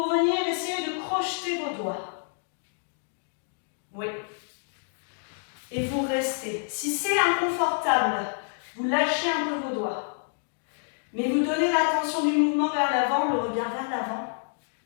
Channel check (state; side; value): silent; right; digital silence